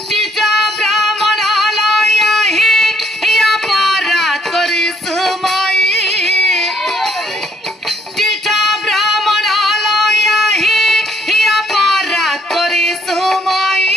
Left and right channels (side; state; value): both; normal; correlation 0.68